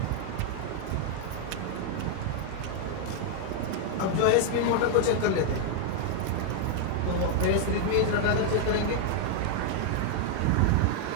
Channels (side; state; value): both; different; correlation 0.00